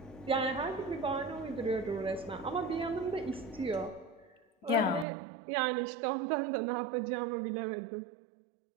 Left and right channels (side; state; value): left; drops out; at 5.1 s